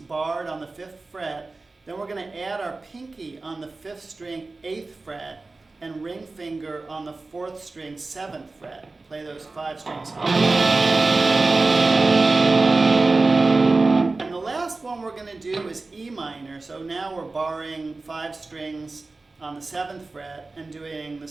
on the 5th fret. Then we're going to add our pinky on the 5th string, 8th fret, and ring finger on the 4th string, 7th fret. Play those 5 strings. And the last one we're going to do is E minor. So now we're barring 5 strings on the 7th fret and doing the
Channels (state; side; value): quieter; left; 3.5 dB